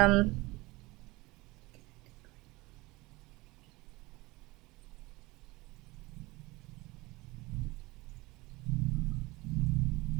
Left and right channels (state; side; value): quieter; left; 22.1 dB